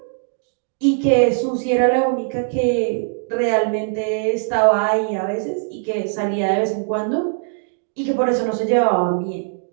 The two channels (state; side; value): silent; left; digital silence